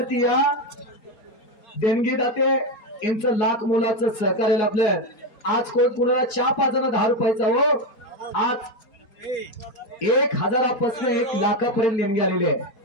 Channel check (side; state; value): right; late; 4.3 ms